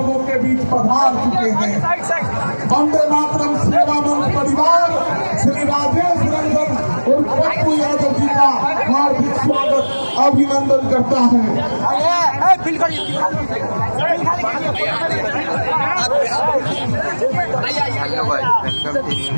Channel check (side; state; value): both; inverted; correlation -1.00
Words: के बीच पधार चुके हैं। वंदे मातरम सेवा मंच परिवार श्री राजेश रंजन उर्फ पप्पू यादव जी का हार्दिक स्वागत अभिनंदन करता है।